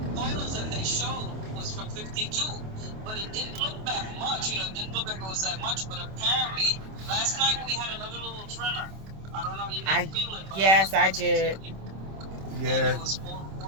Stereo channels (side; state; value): left; late; 26 ms